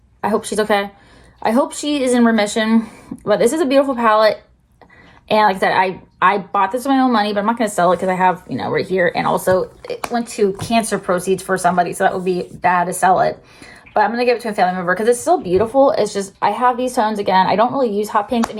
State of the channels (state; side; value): identical; both; correlation 1.00